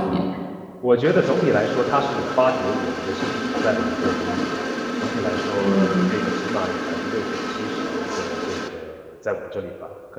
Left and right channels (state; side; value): identical; both; correlation 1.00